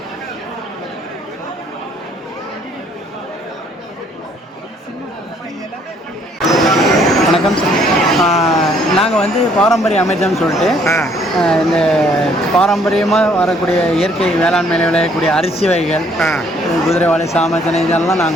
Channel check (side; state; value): both; normal; correlation 0.64